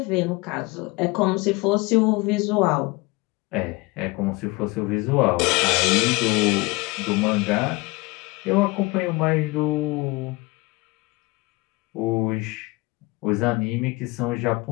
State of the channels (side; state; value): right; quieter; 24.2 dB